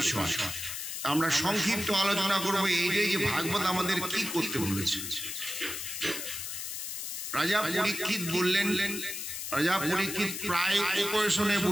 আমরা সংক্ষিপ্ত আলোচনা করবো এইটাই যে ভাগবত আমাদের কি করতে বলেছে। রাজা পরীক্ষিত বললেন, রাজা পরীক্ষিত প্রায় উপবেশনে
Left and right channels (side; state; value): left; noise; hiss, 6 dB below the sound